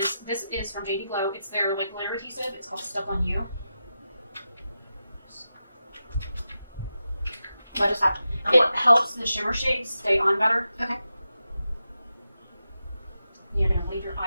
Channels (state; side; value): inverted; both; correlation -0.90